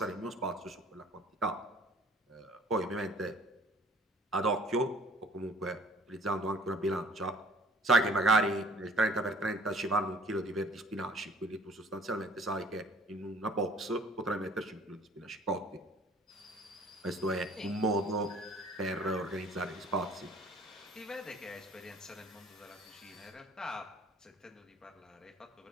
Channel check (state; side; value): normal; both; correlation 0.54